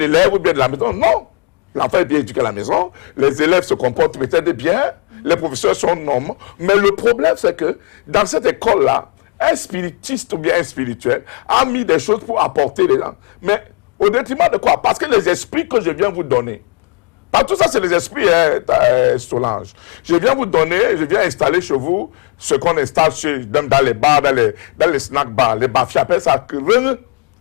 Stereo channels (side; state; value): right; quieter; 36.8 dB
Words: élève ou bien de la maison. Non. L'enfant est bien éduqué à la maison. Les élèves se comportent peut-être bien. Les professeurs sont normaux. Mais le problème, c'est que dans cette école-là, un spiritiste ou bien un spirituel a mis des choses pour apporter les gens. Mais au détriment de quoi? Parce que les esprits que je viens vous donner, pas tout ça, c'est les esprits, Solange. Je viens vous donner, je viens installer chez vous ce qu'on installe dans les bars, dans les snack bars. Les bafies appellent ça rung.